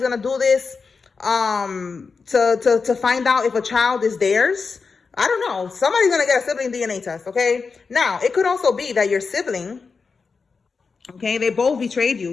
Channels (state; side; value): quieter; right; 4.9 dB